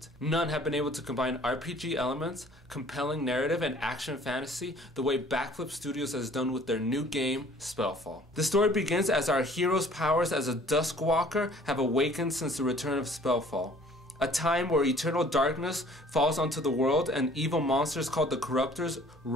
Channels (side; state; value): both; normal; correlation 0.53